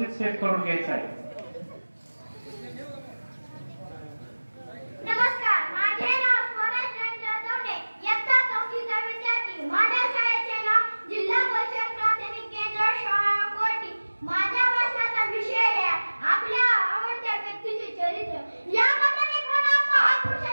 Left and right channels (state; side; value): inverted; both; correlation -1.00